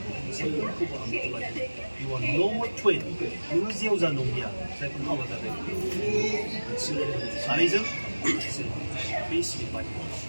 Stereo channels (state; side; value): inverted; both; correlation -1.00